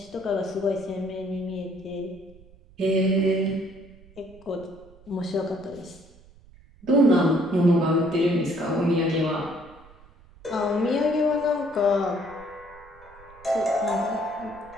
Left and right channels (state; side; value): noise; right; rumble, 24 dB below the sound